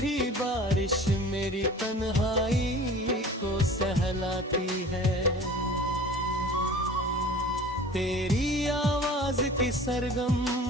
बारिश मेरी तन्हाई को सहलाती है। तेरी आवाज की सरगम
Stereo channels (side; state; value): both; normal; correlation 0.43